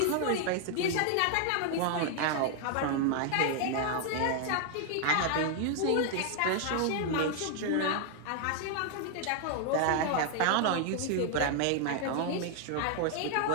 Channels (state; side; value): different; both; correlation 0.00